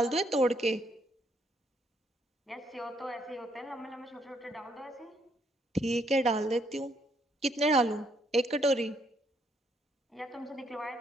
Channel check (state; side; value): normal; both; correlation 0.71